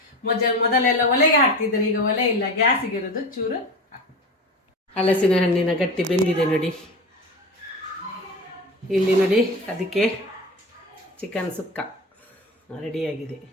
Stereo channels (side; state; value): both; normal; correlation 0.28